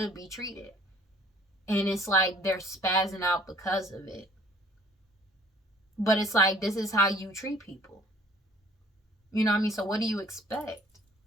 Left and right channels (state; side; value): normal; both; correlation 0.55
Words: be treated. And it's like they're spazzing out because of it. But it's like, this is how you treat people. You know what I mean? So what do you expect?